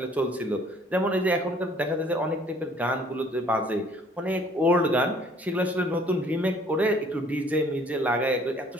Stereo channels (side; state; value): both; normal; correlation 0.57